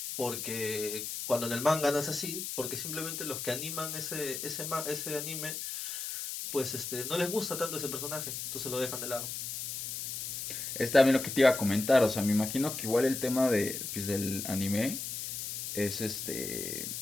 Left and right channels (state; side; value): noise; left; hiss, 5 dB below the sound